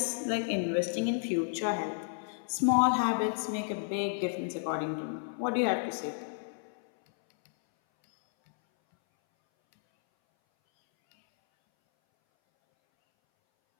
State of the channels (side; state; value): right; silent; 57 dB below the other